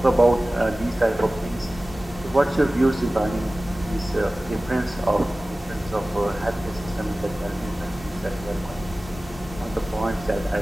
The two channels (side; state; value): both; normal; correlation 0.97